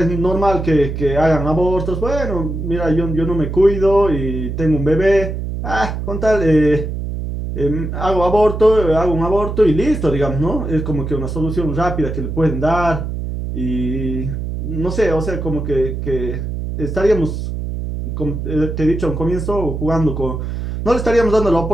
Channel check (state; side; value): noise; right; hum, 5 dB below the sound